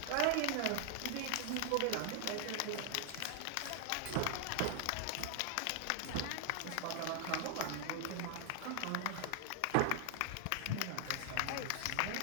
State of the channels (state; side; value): different; both; correlation 0.00